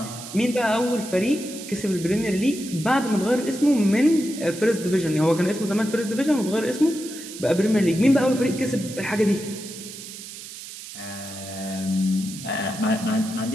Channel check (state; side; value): noise; right; hiss, 12 dB below the sound